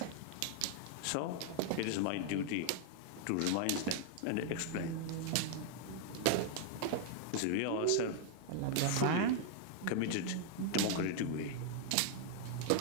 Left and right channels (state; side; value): different; both; correlation 0.00